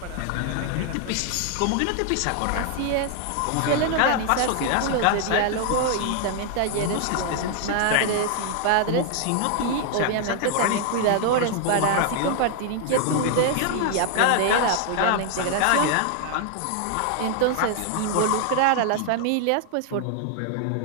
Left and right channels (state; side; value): different; both; correlation 0.00